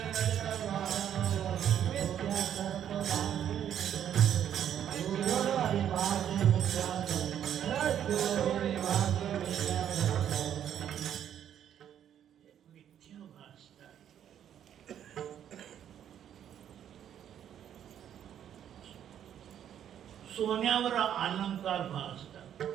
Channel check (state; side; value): quieter; left; 9.8 dB